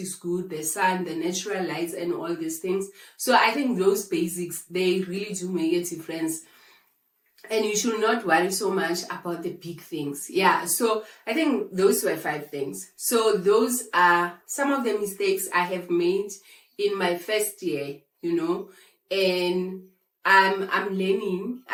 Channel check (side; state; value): both; identical; correlation 1.00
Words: good, the sun, the natural lights, and all these things. So I think those basics, they really do make a difference. And you should not worry so much about the big things. Yeah, so I think those were 5 things. So those are some of the mistakes I have made in my first year, and I'm learning.